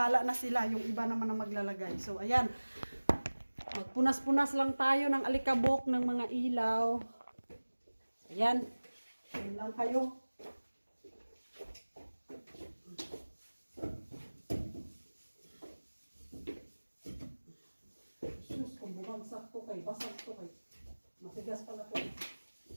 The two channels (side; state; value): both; inverted; correlation -1.00